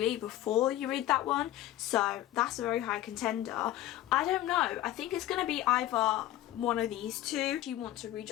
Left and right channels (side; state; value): right; quieter; 14.0 dB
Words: before you read that one, so that's a very high contender. I don't know, I think it's going to be either one of these two. If you want to read